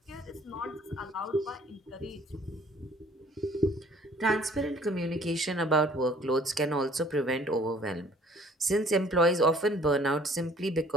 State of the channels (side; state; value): both; normal; correlation 0.55